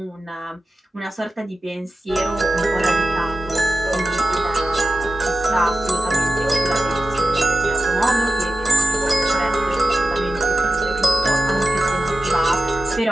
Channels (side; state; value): both; normal; correlation 0.92